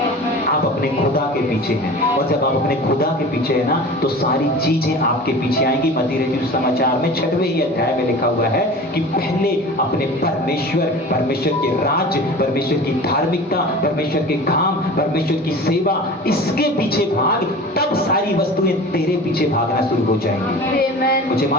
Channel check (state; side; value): normal; both; correlation 0.37